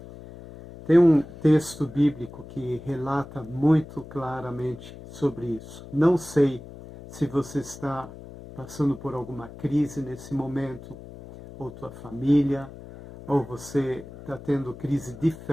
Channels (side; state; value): left; noise; hum, 16 dB below the sound